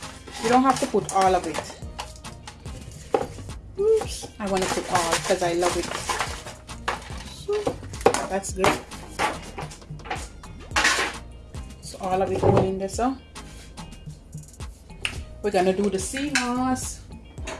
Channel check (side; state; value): both; identical; correlation 1.00